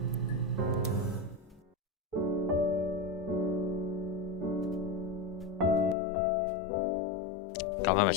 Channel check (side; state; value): right; drops out; at 6.0 s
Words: 咁係咪